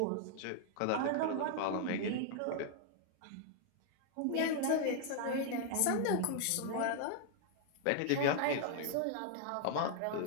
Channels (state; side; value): different; both; correlation 0.00